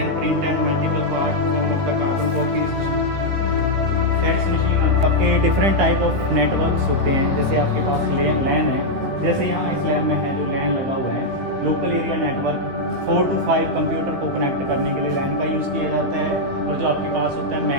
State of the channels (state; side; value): late; left; 16 ms